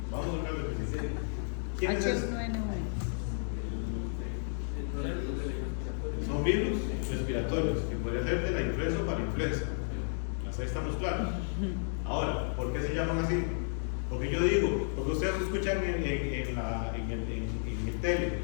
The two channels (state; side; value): silent; right; digital silence